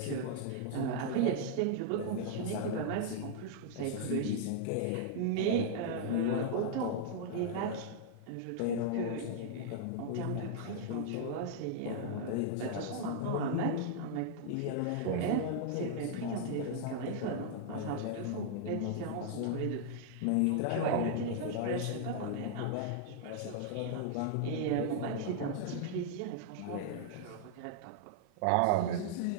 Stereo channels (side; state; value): both; different; correlation -0.01